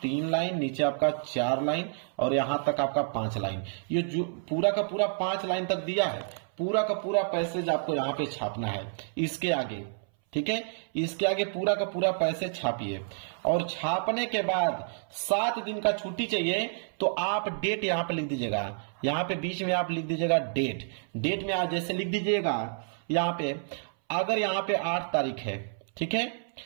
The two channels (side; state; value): left; silent; 58 dB below the other